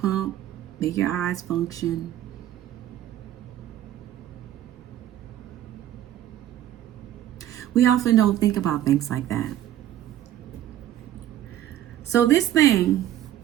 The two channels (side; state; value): left; quieter; 12.2 dB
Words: make your eyes function. We often don't think about things like that. So this thing,